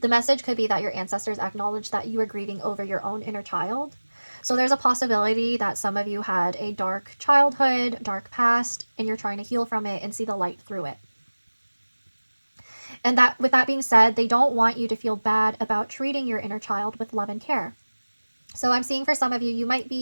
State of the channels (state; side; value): inverted; both; correlation -1.00